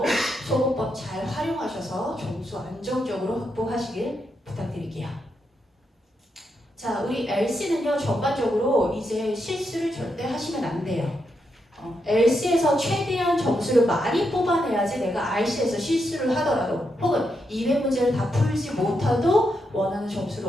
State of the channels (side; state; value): both; normal; correlation 0.82